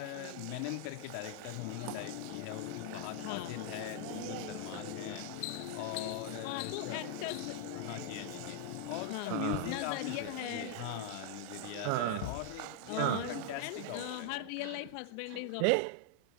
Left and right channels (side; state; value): both; different; correlation 0.00